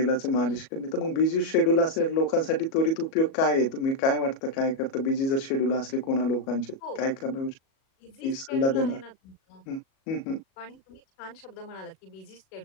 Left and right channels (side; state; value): right; late; 37 ms